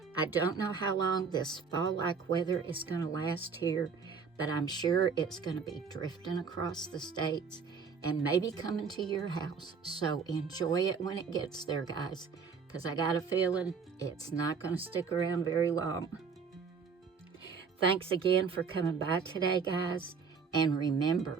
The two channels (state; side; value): quieter; left; 5.8 dB